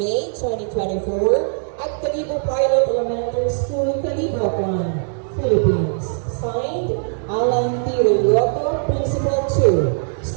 2024 at Calibo Pilot Elementary School, Calibo, Philippines. Signed, Alan T. Relioto, Principal 2,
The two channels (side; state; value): left; silent; digital silence